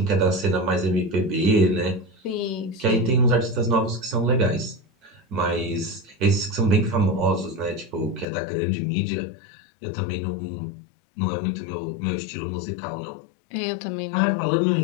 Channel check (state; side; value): drops out; right; at 8.2 s